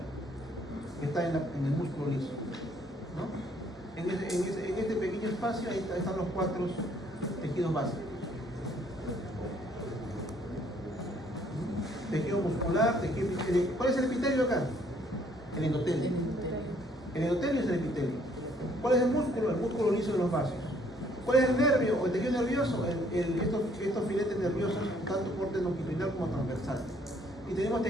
que está en el músculo liso, ¿no? En este pequeño espacio ahí están los 4 tejidos básicos. Tejido muscular, tejido epitelio. ¿Cuál es el epitelio acá? El endotelio. El endotelio es el epitelio. ¿Cuál es el músculo? El músculo liso de los vasos. ¿Cuál es el nervio o el tejido nervioso? Estos filetes nerviosos, tanto corte longitudinal como transversal. Y tenemos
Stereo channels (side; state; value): both; normal; correlation 0.64